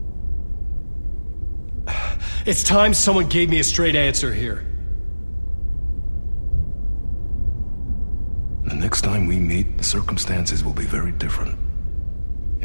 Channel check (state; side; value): inverted; both; correlation -1.00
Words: It's time someone gave me a straight answer here. The next time we meet, the circumstances will be very different.